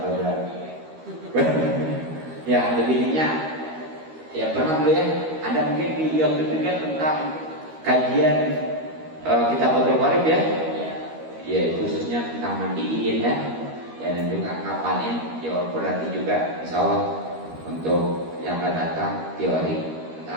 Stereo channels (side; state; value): left; late; 13 ms